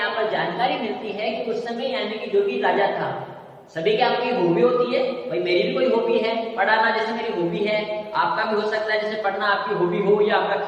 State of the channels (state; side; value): identical; both; correlation 1.00